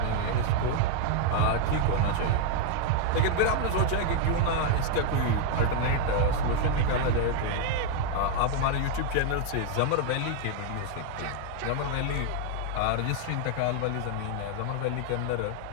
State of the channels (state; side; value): different; both; correlation 0.00